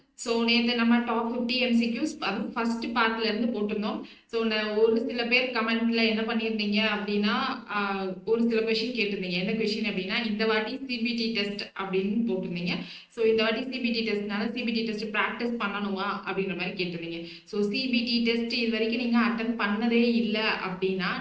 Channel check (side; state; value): both; identical; correlation 1.00